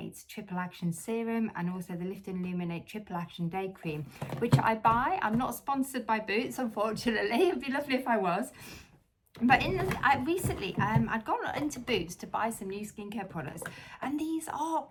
Triple Action Serum and also the Lift and Illuminate Triple Action Day Cream, which I buy. I'm not sponsored by Boots, unfortunately. It'd be lovely if I was. But recently, I'd gone into Boots to buy some new skincare products, and these are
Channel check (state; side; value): identical; both; correlation 1.00